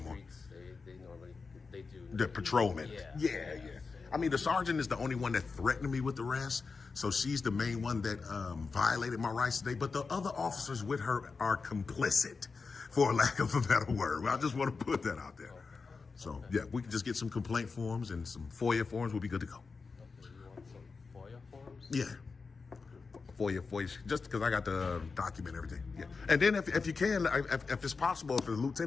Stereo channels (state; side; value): quieter; right; 4.6 dB